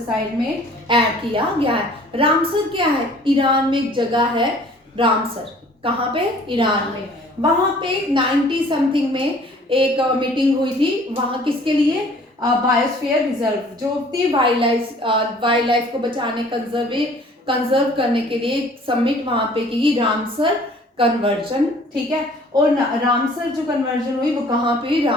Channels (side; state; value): both; normal; correlation 0.53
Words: साइट में ऐड किया गया है। रामसर क्या है? ईरान में एक जगह है रामसर, कहाँ पे? ईरान में। वहां पे 90 समथिंग में एक मीटिंग हुई थी, वहां किसके लिए? बायोस्फीयर रिजर्व जो थी, वाइल्ड लाइफ को बचाने, कंजर्व करने के लिए समिट वहां पे की, रामसर कन्वर्जन, ठीक है। और रामसर जो कन्वर्जन हुई वो कहाँ पे?